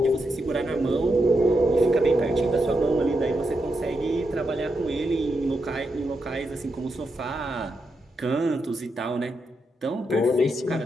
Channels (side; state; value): both; normal; correlation 0.84